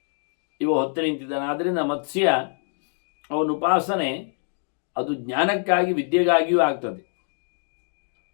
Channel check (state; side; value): silent; right; 62 dB below the other